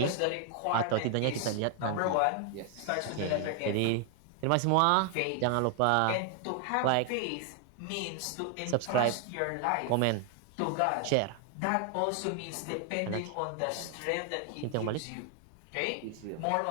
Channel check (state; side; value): different; both; correlation 0.00